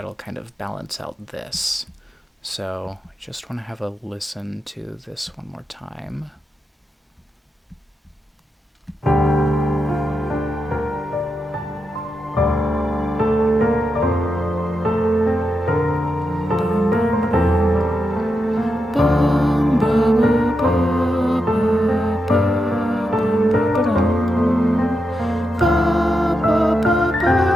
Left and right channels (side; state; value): both; normal; correlation 0.87